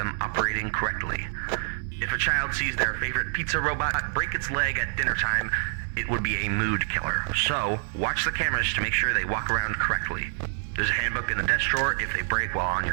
operating correctly. If a child sees their favorite pizza robot break its leg at dinner time, it would be a mood killer. So, watch the cameras to make sure they walk around correctly. There's a handbook in the desk drawer if they break while on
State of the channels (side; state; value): left; silent; 60 dB below the other